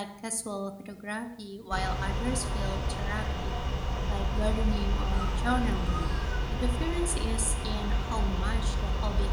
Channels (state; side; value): identical; both; correlation 1.00